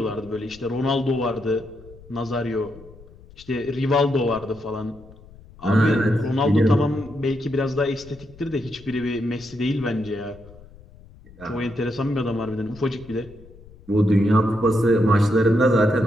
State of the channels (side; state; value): left; noise; rumble, 21 dB below the sound